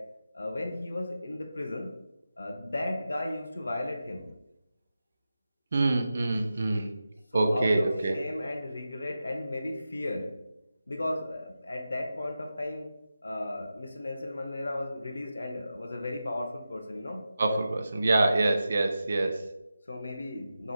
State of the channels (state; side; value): inverted; both; correlation -0.92